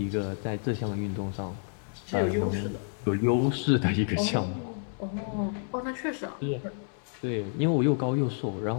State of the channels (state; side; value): silent; right; 58 dB below the other